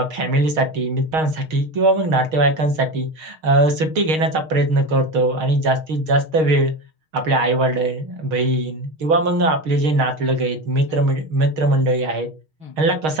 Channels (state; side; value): late; left; 6.4 ms